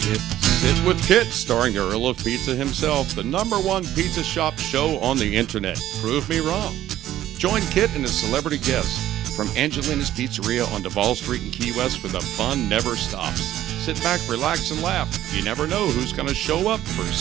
Kit. Sit with Kit, starring the Earl of Pizza himself, the #1 pizza shop show on the internet. Prove me wrong. Join Kit and his celebrity guests from Angelina's Pizzeria on Duval Street in Key West, where the fun never stops. Sit back, relax, and laugh. You never know who's going to show up for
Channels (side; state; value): left; quieter; 13.0 dB